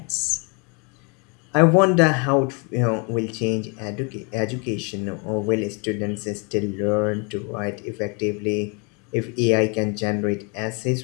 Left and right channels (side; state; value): right; quieter; 33.8 dB